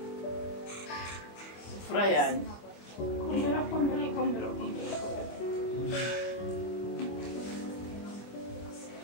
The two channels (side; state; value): right; late; 25 ms